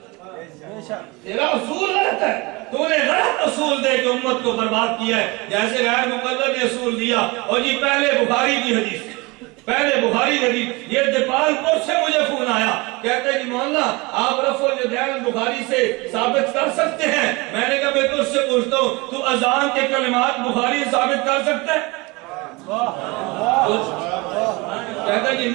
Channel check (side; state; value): left; quieter; 25.0 dB